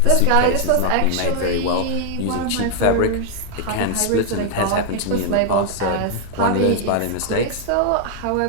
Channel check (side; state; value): both; different; correlation 0.00